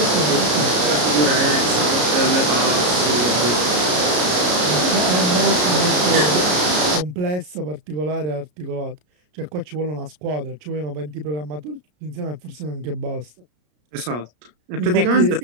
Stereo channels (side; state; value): left; late; 33 ms